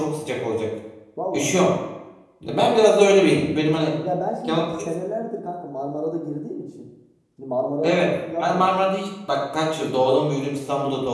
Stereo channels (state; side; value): identical; both; correlation 1.00